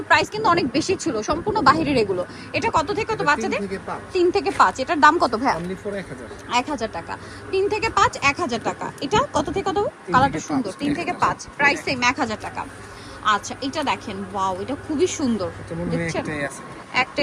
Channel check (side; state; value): both; identical; correlation 1.00